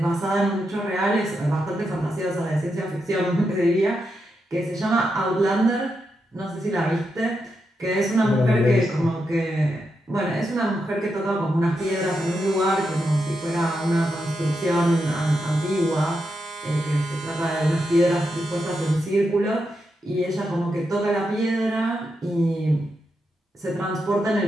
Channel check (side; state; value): both; normal; correlation 0.85